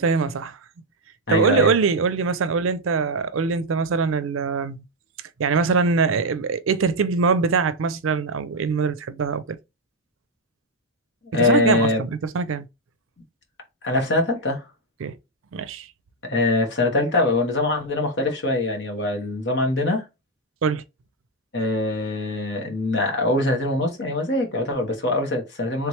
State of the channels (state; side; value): normal; both; correlation 0.04